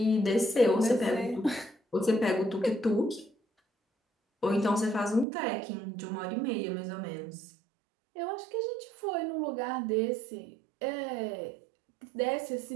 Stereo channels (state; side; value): drops out; left; at 5.2 s